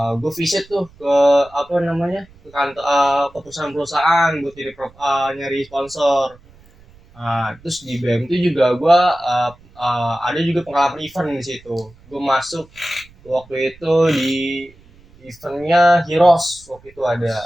gue visit tuh ke apa namanya ke kantor ke perusahaan-perusahaan buat nyari sponsor. Terus di BM itu juga gua ada juga pengalaman event di situ. Gue masuk waktu itu di eventnya Heroes waktu itu ada.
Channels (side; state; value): right; noise; rumble, 26 dB below the sound